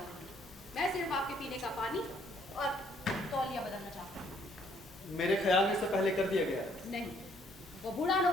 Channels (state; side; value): normal; both; correlation 0.66